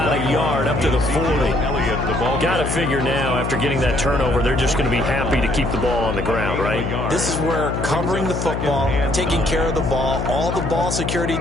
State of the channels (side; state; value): left; noise; hum, 2 dB below the sound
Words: a yard up to the 40. Got to figure now, after getting that turnover, they're just going to be happy to keep the ball on the ground, right? This is where covering the football, taking care of the ball, all the ball security